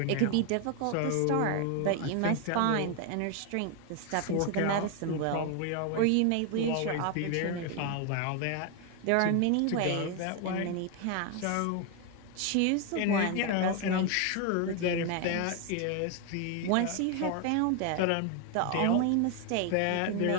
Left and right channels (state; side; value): different; both; correlation 0.01